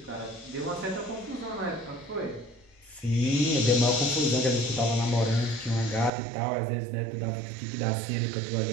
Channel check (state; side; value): drops out; left; at 6.1 s